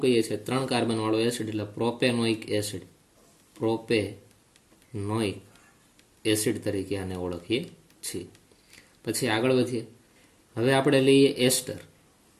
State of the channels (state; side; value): identical; both; correlation 1.00